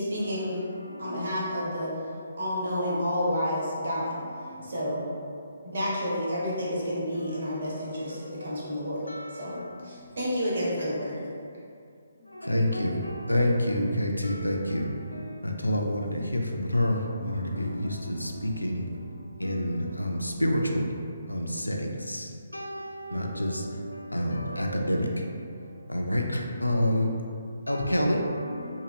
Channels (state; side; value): inverted; both; correlation -0.80